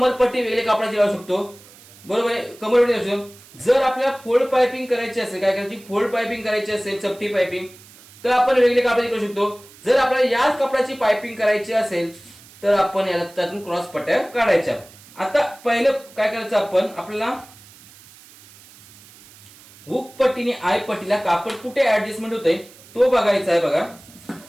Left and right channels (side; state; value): right; noise; hiss, 23 dB below the sound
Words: वेगळ्या कापडाची लावू शकतो. बरोबर आहे, कमरपट्टी लावू शकतो. जर आपल्याला फोल्ड पायपिंग करायची असेल, काय करायची, फोल्ड पायपिंग करायची असेल, चपटी पायपिंग, तर आपण वेगळी कापडाची करू शकतो. जर आपल्याला याच कपड्याची पायपिंग करायची असेल तर आपण याला त्यातून क्रॉस पट्ट्या काढायच्या. आता पहिलं काय करायचं, आपण आपल्याला हुक पट्टीने आय पट्टीला कापड कुठे ऍडजस्टमेंट होतंय तो बघायचा आहे. बघा,